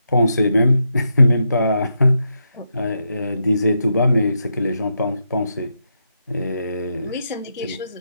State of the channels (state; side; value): inverted; both; correlation -0.83